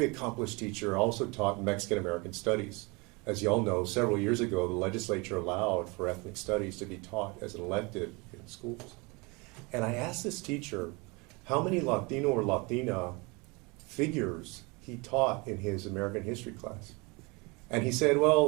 accomplished teacher, also taught Mexican American studies. As you all know, several years ago, the legislature allowed for ethnic studies to be taught as an elective in schools. And I asked this teacher how many Latino or Latina figures he taught in his American history class. And he said,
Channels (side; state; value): left; quieter; 27.7 dB